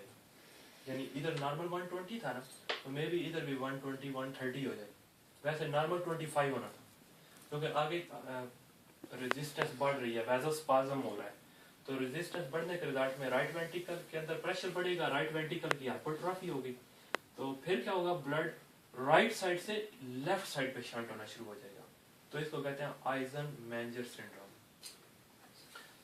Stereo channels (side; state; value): both; identical; correlation 1.00